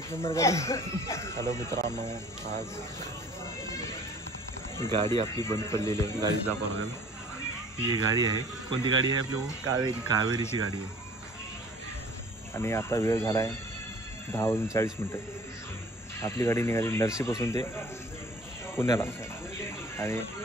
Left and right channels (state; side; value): normal; both; correlation 0.49